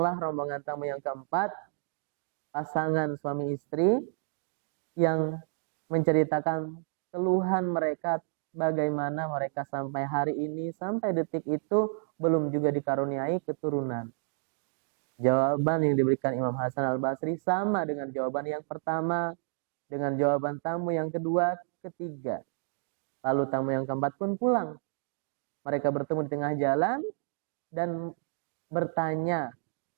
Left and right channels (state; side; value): silent; left; digital silence